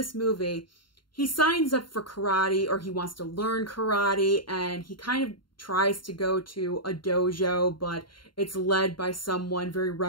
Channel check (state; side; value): late; right; 0.72 ms